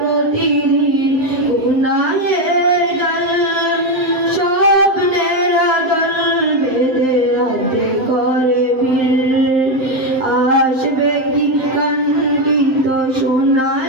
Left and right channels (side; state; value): left; late; 7.7 ms